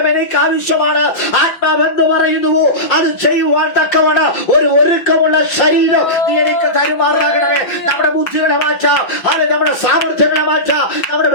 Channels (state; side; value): late; right; 6.0 ms